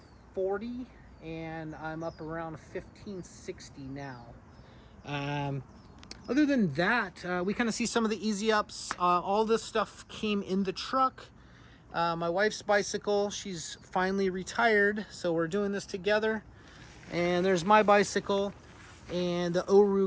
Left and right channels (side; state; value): both; identical; correlation 1.00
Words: and I'm up around 1,560 now. Other than that, we kind of see some of the easy ups. All this stuff came in the truck. My wife's bicycle, she's finally retired, so we're doing this together. And there's my bicycle and the